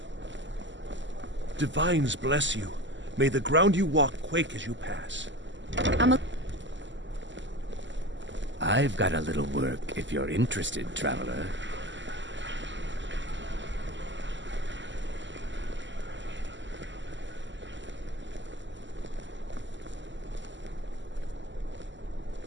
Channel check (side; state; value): left; late; 0.54 ms